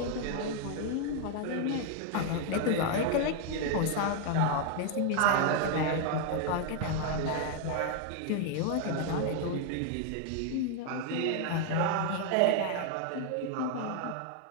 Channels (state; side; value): different; both; correlation 0.00